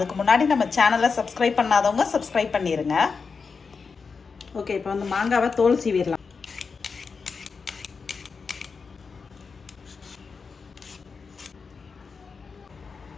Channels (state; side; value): quieter; right; 5.1 dB